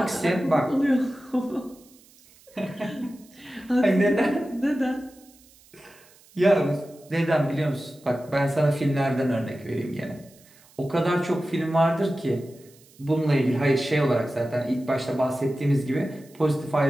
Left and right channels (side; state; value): right; noise; hiss, 27 dB below the sound